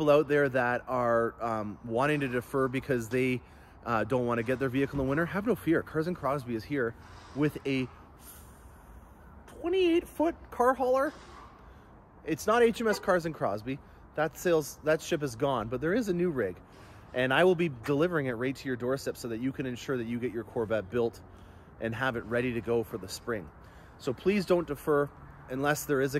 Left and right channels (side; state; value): both; identical; correlation 1.00